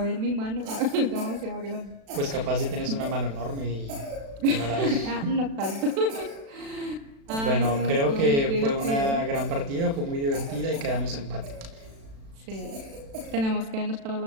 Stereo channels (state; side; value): late; left; 36 ms